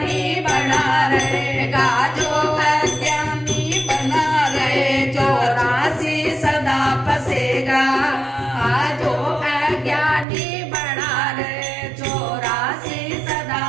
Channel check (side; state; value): left; drops out; at 10.2 s